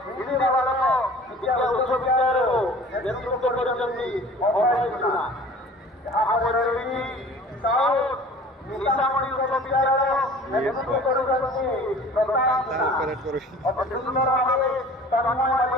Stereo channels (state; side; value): normal; both; correlation 0.45